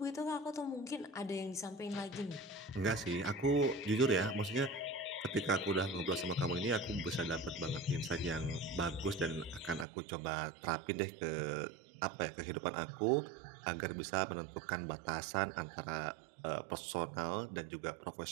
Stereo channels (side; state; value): left; drops out; at 9.9 s